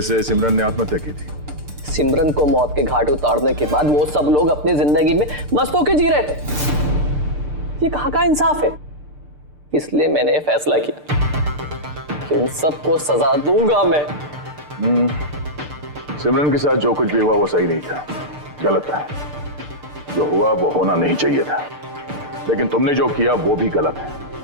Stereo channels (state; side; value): late; left; 6.7 ms